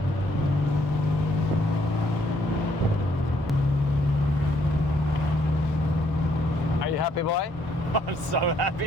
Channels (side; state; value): both; normal; correlation 0.69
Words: Are you happy, boy? I'm so